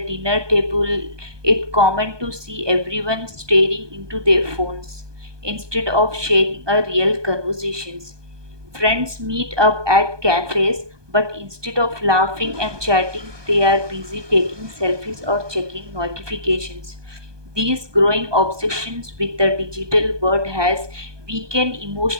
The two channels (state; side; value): late; left; 1.2 ms